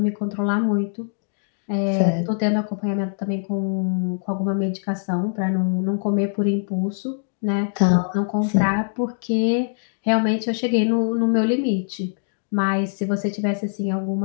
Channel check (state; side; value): silent; right; digital silence